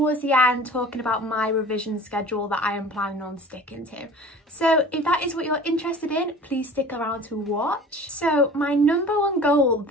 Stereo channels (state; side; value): normal; both; correlation 0.43